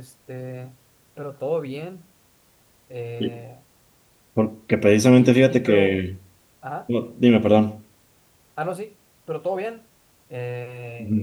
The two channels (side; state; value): both; identical; correlation 1.00